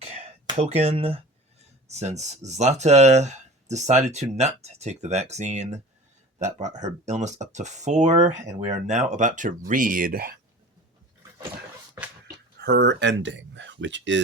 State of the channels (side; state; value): both; normal; correlation 0.39